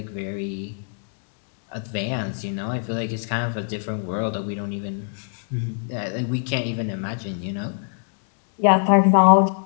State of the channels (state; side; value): silent; right; digital silence